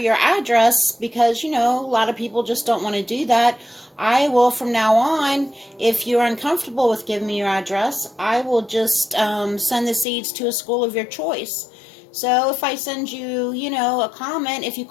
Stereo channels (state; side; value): drops out; right; at 10.1 s